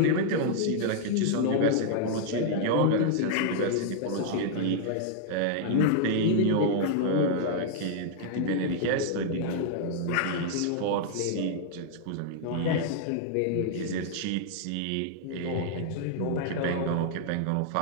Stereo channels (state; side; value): different; both; correlation -0.01